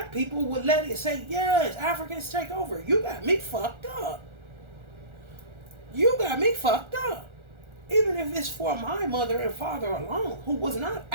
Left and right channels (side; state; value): left; late; 1.4 ms